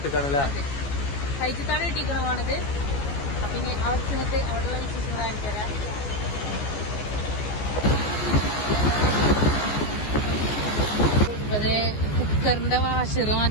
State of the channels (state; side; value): late; right; 14 ms